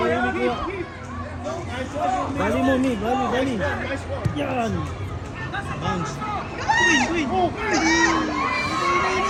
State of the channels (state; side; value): identical; both; correlation 1.00